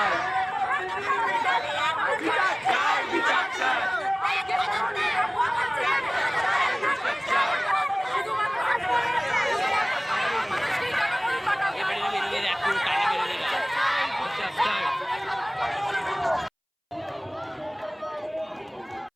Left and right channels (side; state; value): both; identical; correlation 1.00